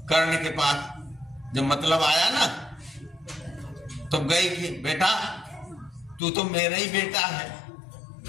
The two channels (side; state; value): right; drops out; at 6.2 s